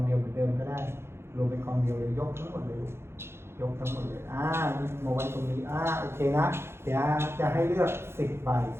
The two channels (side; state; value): left; late; 0.12 ms